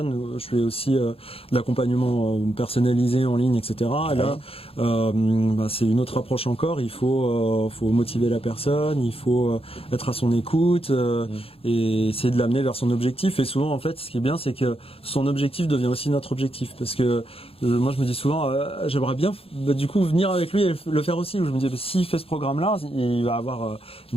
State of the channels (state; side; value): late; right; 0.27 ms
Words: Je fais aussi de l'accompagnement personnalisé en ligne, etc. Et là, c'est une autre approche encore. Il faut motiver la personne, il faut être à son écoute et essayer de l'amener vers son objectif. Et souvent, en fait, ce qui est bien, c'est que son objectif devient aussi notre objectif. Parce que moi, je me dis souvent, j'aimerais bien du coup venir avec lui et le faire aussi. Où je me dis, s'il fait ce programme-là, il va avoir